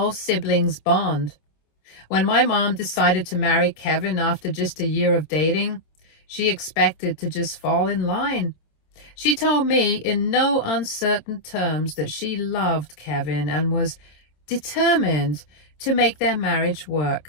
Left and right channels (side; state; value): right; late; 26 ms